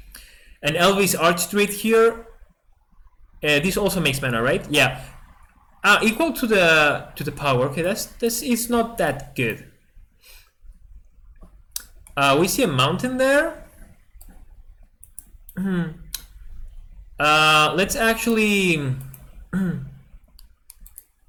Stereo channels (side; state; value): both; identical; correlation 1.00